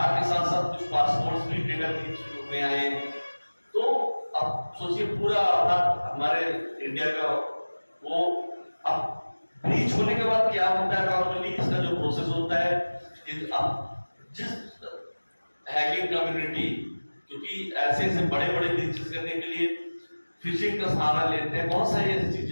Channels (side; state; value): both; inverted; correlation -1.00